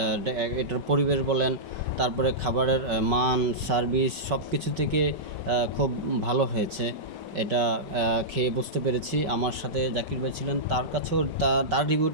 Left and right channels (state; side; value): late; left; 5.2 ms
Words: এটার পরিবেশ বলেন, তারপরে খাবারের মান, সার্ভিস সব কিছু থেকে খুব ভালো হয়েছে। এটা খেয়ে বুঝতে পেরেছি। আমার সাথে জাকির ভাই ছিলেন, তার কাছেও তার